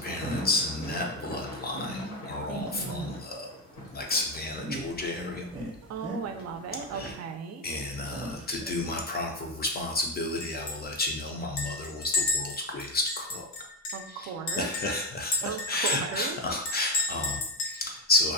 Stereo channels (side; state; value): both; normal; correlation 0.11